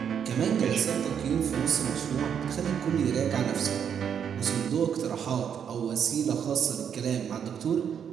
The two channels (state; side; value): quieter; left; 8.0 dB